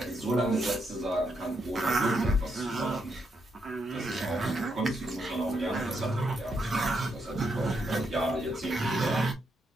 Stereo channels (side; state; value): both; normal; correlation 0.79